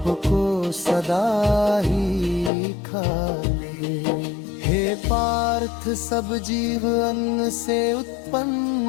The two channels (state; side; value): drops out; right; at 2.5 s